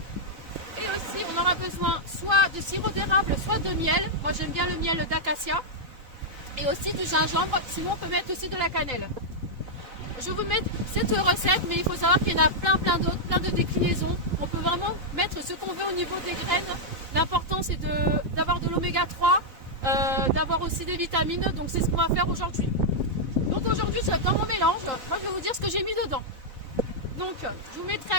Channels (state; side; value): late; left; 3.8 ms